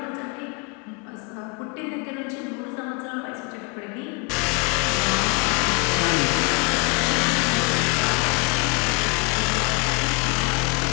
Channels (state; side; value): quieter; right; 31.1 dB